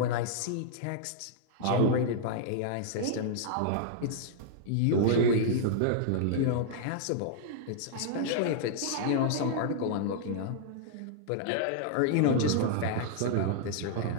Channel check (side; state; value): both; different; correlation -0.01